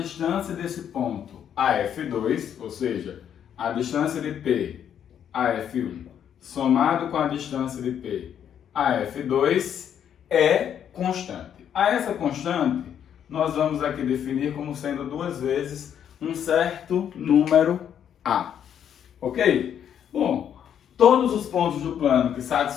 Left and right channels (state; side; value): quieter; right; 9.1 dB